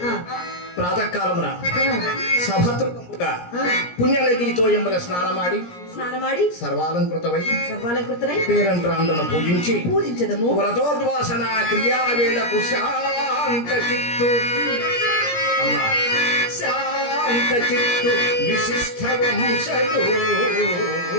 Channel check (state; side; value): late; right; 17 ms